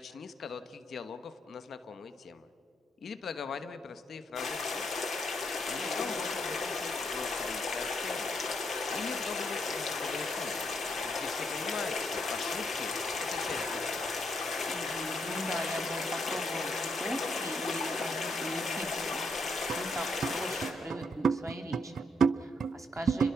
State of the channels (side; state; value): both; normal; correlation 0.76